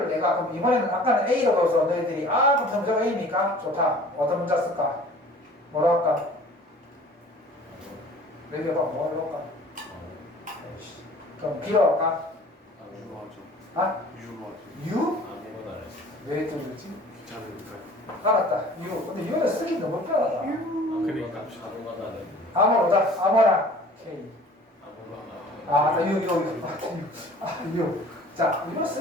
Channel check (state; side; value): normal; both; correlation 0.47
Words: 내가 그럼 이번에는 아까는 A로 넣어서 너희들이 그럼 점점 A입니까? 좋다. 어떤 문자 쓸까? 뭐라 할까? 얘기해봐. 뭐 할까? 그럼 B로 할까? 유로 하죠. 아? 유로 하죠. U? 아무거나 안 했어. 왜 뚫렸지? 귀찮으니까. 알았다. U. 근데 U는 쓰기 너무 편하다. 그러니까. 아무거나 안 했어. 아무로다. 아무나. K. 아무거나. U. 자, U